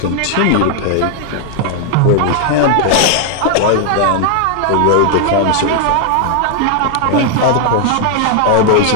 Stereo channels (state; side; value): different; both; correlation 0.00